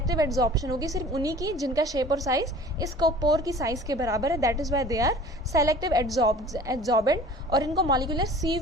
एब्जॉर्प्शन होगी, सिर्फ उन्हीं की जिनका शेप और साइज इस पोर की साइज के बराबर है, that is why they are selective absorbent, और इनको मॉलिक्यूलर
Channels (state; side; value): normal; both; correlation 0.46